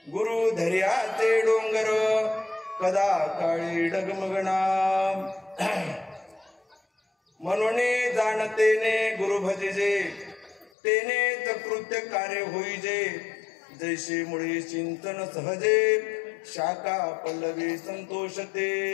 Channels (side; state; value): right; drops out; at 10.7 s